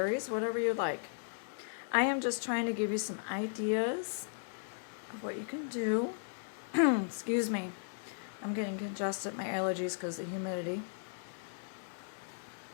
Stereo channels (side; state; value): right; silent; digital silence